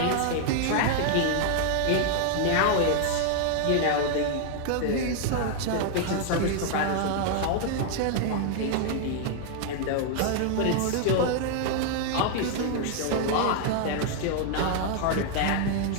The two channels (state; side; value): different; both; correlation 0.00